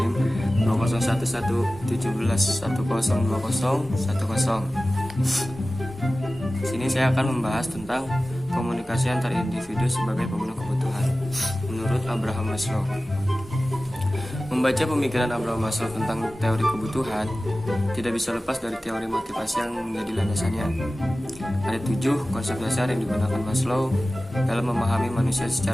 20111711102010. Sini saya akan membahas tentang komunikasi antar individu sebagai pemenuh kebutuhan menurut Abraham Maslow. Membaca pemikiran Abraham Maslow tentang teori kebutuhan tidak bisa lepas dari teori motivasi yang menjadi landasannya. Ada 7 konsep dasar yang digunakan Maslow dalam memahami manusia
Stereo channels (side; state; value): both; normal; correlation 0.96